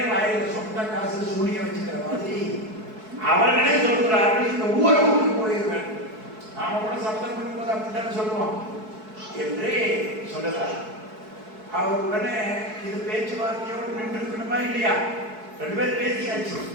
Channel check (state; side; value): late; left; 4.6 ms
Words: வாயில சொந்த காசு சூனிய வச்சுக்கிற மாதிரி அவர்களே சொல்கிறார்கள், இந்த ஊரை விட்டு போயிடுவேன். நாம கூட சப்தம் பண்ணும்போது அப்படித்தான் சொல்லுவோம் என்று சொல்லுகிறார். அவர் உடனே இது பேச்சுவார்த்தையோடு நின்று இருக்கணுமா இல்லையா? 2 பேர் பேசியாச்சு.